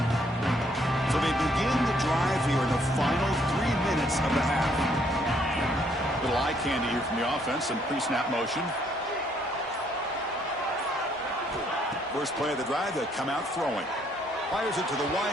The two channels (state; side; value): normal; both; correlation 0.68